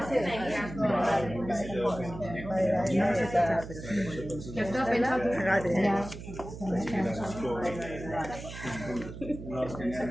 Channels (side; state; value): right; noise; hum, 11 dB below the sound